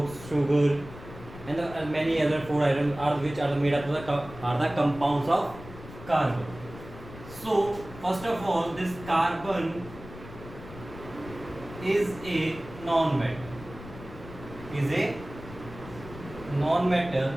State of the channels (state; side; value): noise; left; rumble, 15 dB below the sound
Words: sugar, and many other food items are which are made up of the compounds of carbon. So first of all, this carbon is a non-metal. Is a non-metal